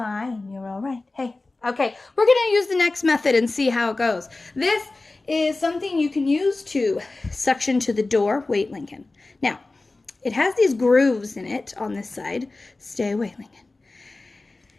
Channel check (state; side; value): quieter; right; 3.2 dB